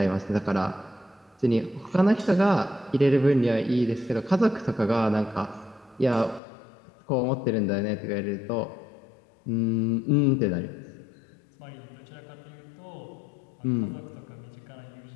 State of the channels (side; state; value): right; drops out; at 6.4 s